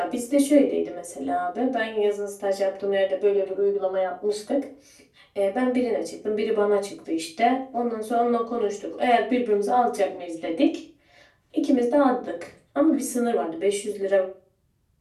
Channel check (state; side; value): identical; both; correlation 1.00